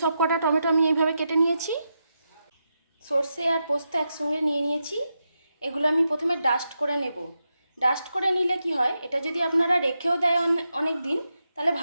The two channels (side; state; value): both; inverted; correlation -0.87